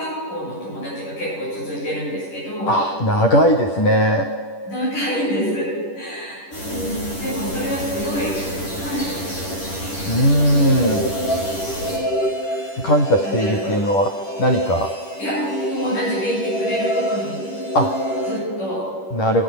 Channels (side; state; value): right; late; 10 ms